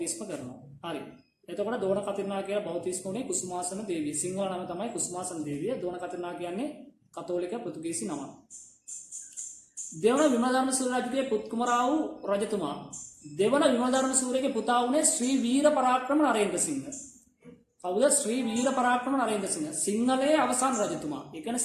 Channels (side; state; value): both; identical; correlation 1.00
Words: කරනවා. හරි. එතකොට දෝන කතිර්නා කියලා බෞතිස්ම උනේ කුසුමාසන දේවිය. සිංහල නම තමයි කුසුමාසන දේවිය. දෝන කතිර්නා කියන්නේ කතෝලික පෘතුගීසි නම. දෙවන විමලධර්ම සූර්ය රජුගේ පුත් කුමරා වූ රජතුමා. දෙවන විමලධර්ම සූර්යගේ පුතා වුණේ ශ්‍රී වීර පරාක්‍රම නරේන්ද්‍ර සිංහ. කවුද? ශ්‍රී වීර පරාක්‍රම නරේන්ද්‍ර සිංහ. සිංහලයේ අවසාන රජතුමා. ඒ